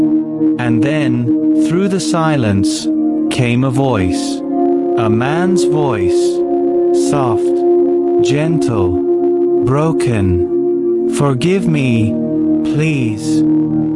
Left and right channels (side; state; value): both; identical; correlation 1.00